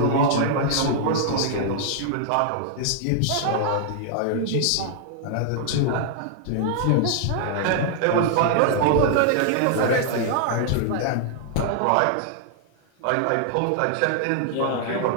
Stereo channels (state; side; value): different; both; correlation 0.00